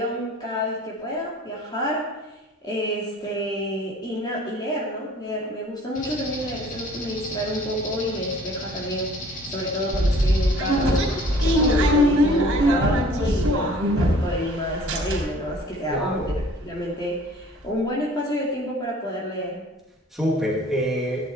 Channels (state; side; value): normal; both; correlation 0.51